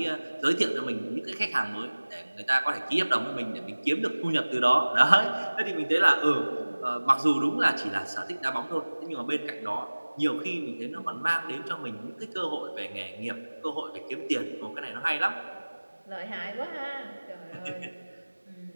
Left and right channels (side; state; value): both; inverted; correlation -1.00